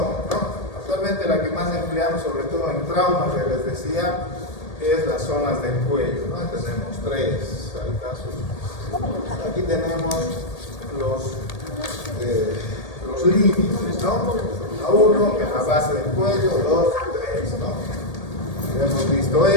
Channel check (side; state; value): right; late; 1.8 ms